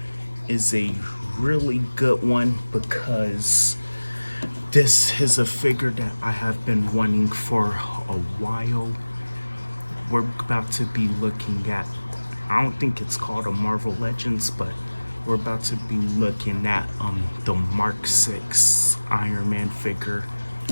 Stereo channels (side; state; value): both; inverted; correlation -1.00